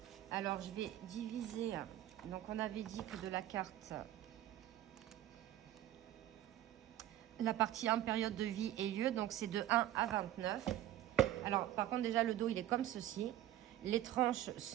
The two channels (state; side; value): quieter; left; 13.1 dB